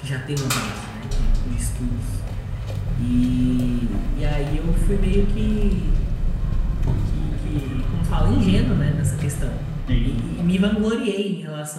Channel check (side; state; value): both; identical; correlation 1.00